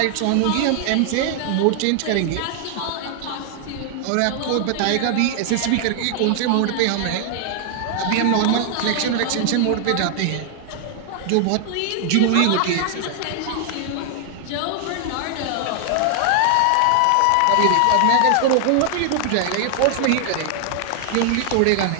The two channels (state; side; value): different; both; correlation 0.00